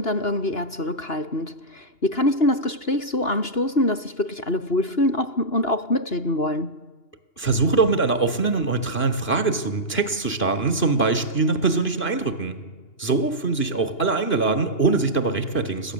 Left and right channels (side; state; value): right; late; 2.9 ms